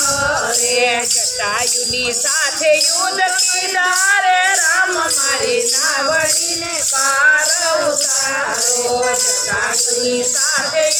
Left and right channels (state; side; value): identical; both; correlation 1.00